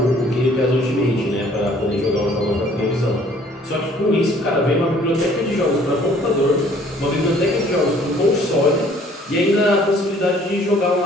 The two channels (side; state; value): both; normal; correlation 0.57